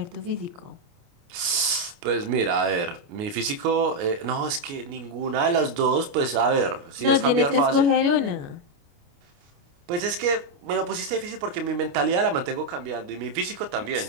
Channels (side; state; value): left; late; 29 ms